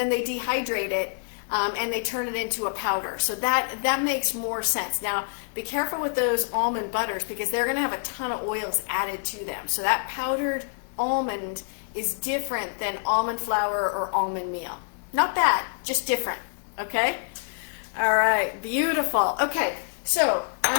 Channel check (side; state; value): right; silent; digital silence